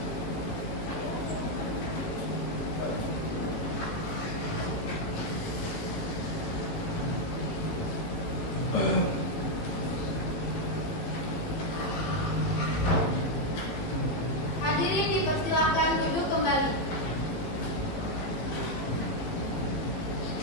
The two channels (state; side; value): late; right; 18 ms